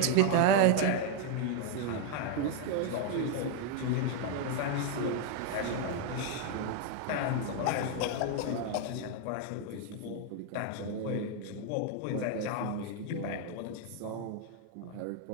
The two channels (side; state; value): both; different; correlation 0.00